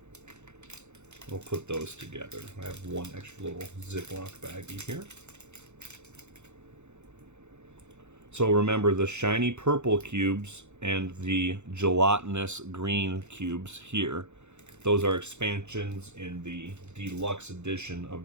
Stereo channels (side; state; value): left; late; 0.83 ms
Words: We'll put those together. I have one extra little Ziploc baggie here. So remember, the shiny purple cubes and the gelatinous green cubes here, those are expansions in the deluxe edition of